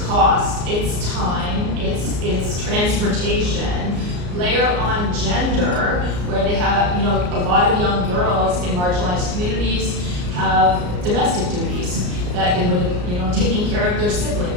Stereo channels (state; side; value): late; left; 34 ms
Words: cost, it's time, it's transportation, layer on gender, where they have, you know, a lot of young girls in marginalized communities have domestic duties that they would, you know, taking care of their